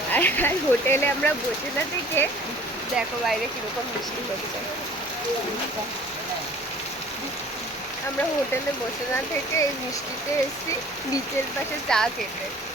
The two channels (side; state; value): both; normal; correlation 0.49